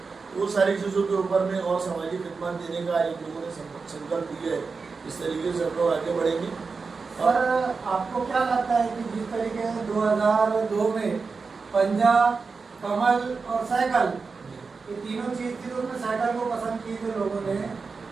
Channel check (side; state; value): left; quieter; 4.6 dB